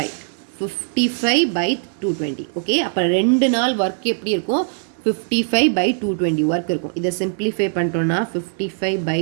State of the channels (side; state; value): left; silent; digital silence